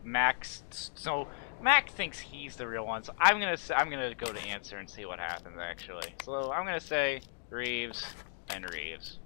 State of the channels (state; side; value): silent; right; digital silence